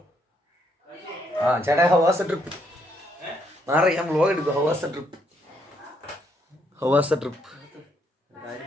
ചേട്ടാ, ഹൗ വാസ് ദ ട്രിപ്പ്? മാറി, ഞാൻ വ്ലോഗ് എടുക്കും. How was the trip?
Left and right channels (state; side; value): normal; both; correlation 0.73